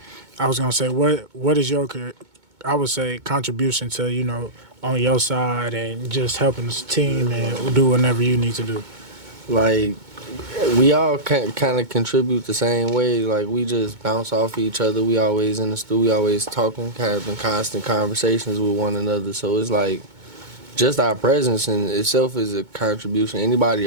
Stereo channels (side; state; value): left; late; 2.2 ms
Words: I was gonna say what is your, I would say, contribution to, you know, on your side and just helping the team and do whatever you need to do? Like, we all kind of contribute the same way. Like, we just bounce off each other. We always in the studio, we always talking, kind of in constant conversations with one another. So it's like, just our presence in itself is a contribution. Anybody